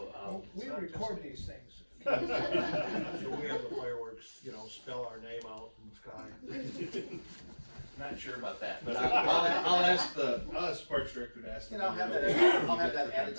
We record these things. So we have the fireworks, spell our name out in the sky. not sure about that, but I'll ask the Parks Director to ask. And I'll have that added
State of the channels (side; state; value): both; inverted; correlation -1.00